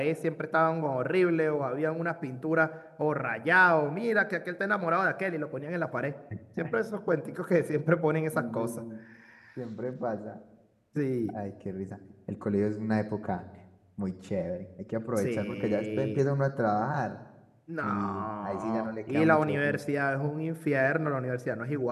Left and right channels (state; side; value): identical; both; correlation 1.00